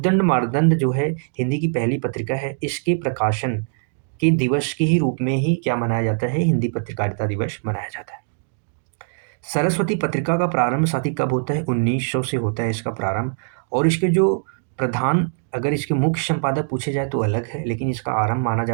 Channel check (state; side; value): silent; left; digital silence